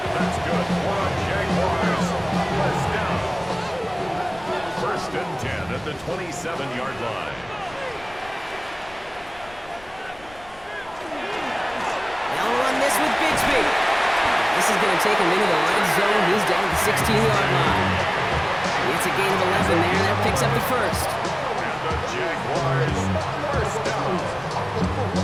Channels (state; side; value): noise; left; rumble, 23 dB below the sound